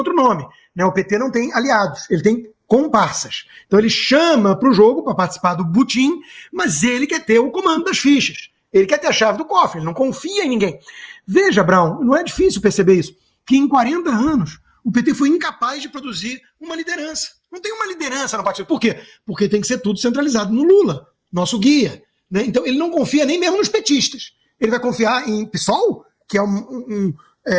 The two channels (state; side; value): identical; both; correlation 1.00